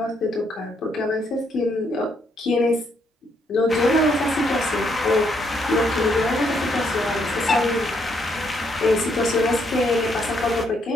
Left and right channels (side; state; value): both; normal; correlation 0.74